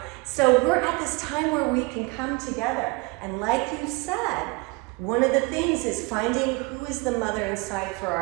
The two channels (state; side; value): quieter; left; 26.5 dB